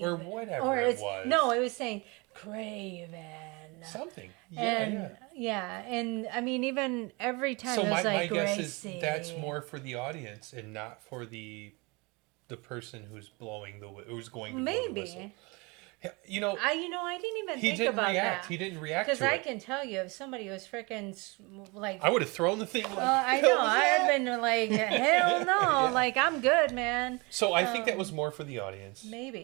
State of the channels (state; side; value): quieter; left; 27.4 dB